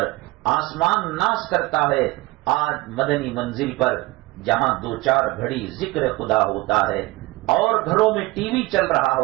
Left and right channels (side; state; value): left; quieter; 21.3 dB